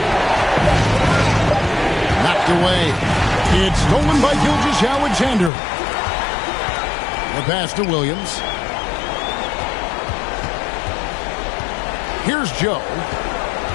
Knocked away. It's stolen by Gilgeous-Alexander. The pass to Williams. Here's Joe.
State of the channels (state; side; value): drops out; right; at 5.5 s